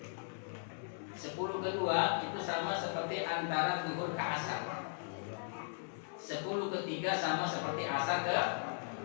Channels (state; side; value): silent; right; 53 dB below the other